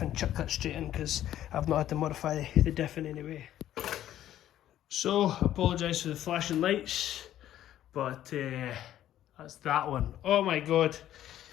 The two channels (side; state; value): right; quieter; 12.2 dB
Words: and chuck that straight in, because I've not had to modify the diff in any way. So, apologise for the flashing lights, but that's that one. Oh my god,